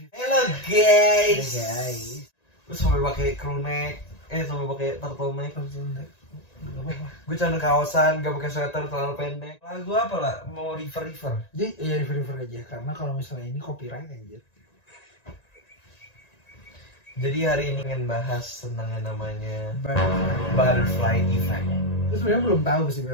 Hello guys. Hey guys. Gue sampai pakai crew neck, sampai pakai turtleneck. Gue celana kaosan, gak pakai sweater terlalu pendek. Lagu apa lah? Mau river. Jadi ya river aja, karena kalau misalnya ini copyright anjir. Jadi hari ini ingin bahas tentang yang namanya Butterfly. butterfly effect. Terus sebenarnya belum tahu sih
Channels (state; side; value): late; right; 1.9 ms